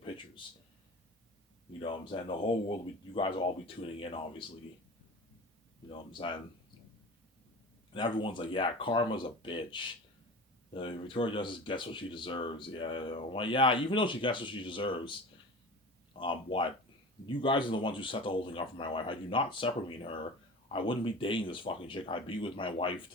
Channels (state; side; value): normal; both; correlation 0.34